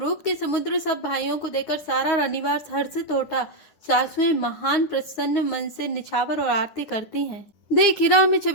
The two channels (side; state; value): right; late; 9.9 ms